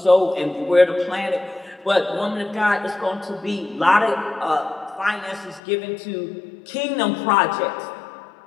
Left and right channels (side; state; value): right; drops out; at 5.6 s